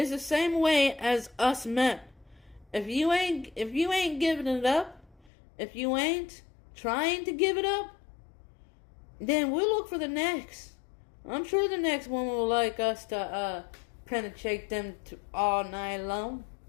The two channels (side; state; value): right; drops out; at 5.3 s